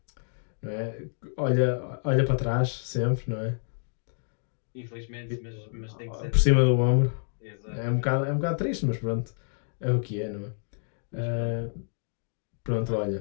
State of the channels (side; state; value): right; silent; digital silence